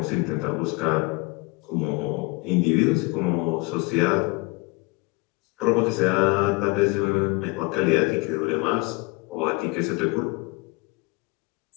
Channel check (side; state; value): right; quieter; 26.6 dB